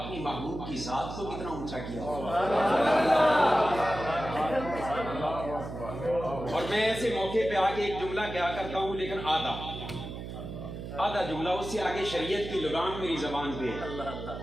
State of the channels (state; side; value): noise; right; hum, 8 dB below the sound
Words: محبوب کی ذات کو کتنا اونچا کیا. اور میں ایسے موقع پہ آگے ایک جملہ کیا کرتا ہوں, لیکن آدھا جملہ, اس سے آگے شریعت کی لگام میری زبان پہ,